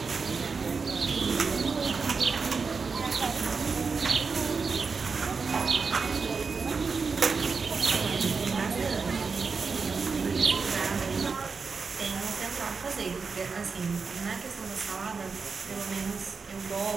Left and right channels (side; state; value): left; quieter; 4.9 dB